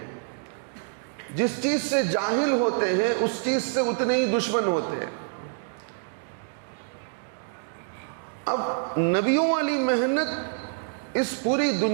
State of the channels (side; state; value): left; silent; digital silence